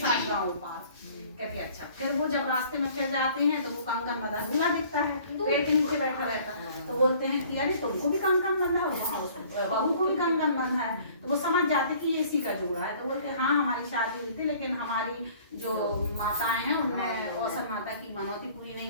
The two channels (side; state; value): both; inverted; correlation -0.53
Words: गाँव पार। कहते अच्छा। फिर वो जब रास्ते में फिर जाते हैं तो वो कंगन बंधा दूल्हा दिखता है, पेड़ के नीचे बैठा रहता। तो बोलते हैं कि अरे तुमको भी कंगन बंधा है, बहू को भी कंगन बंधा है। तो वो समझ जाते कि ये इसी का जोड़ा है। तो बोलते हाँ हमारी शादी हुई थी, लेकिन हमारी जो माताएं हैं उनने औसत माता की मनौती पूरी